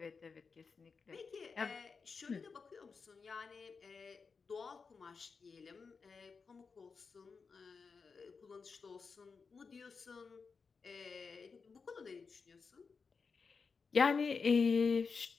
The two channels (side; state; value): right; quieter; 5.1 dB